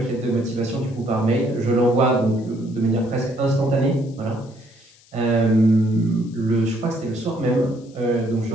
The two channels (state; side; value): noise; left; hiss, 28 dB below the sound